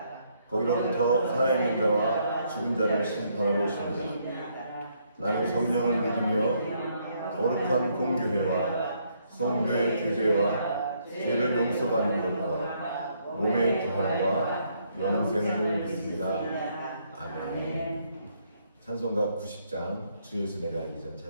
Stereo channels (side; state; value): both; inverted; correlation -0.71